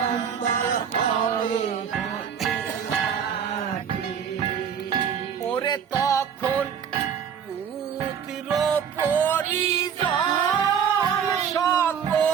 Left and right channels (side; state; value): left; quieter; 7.7 dB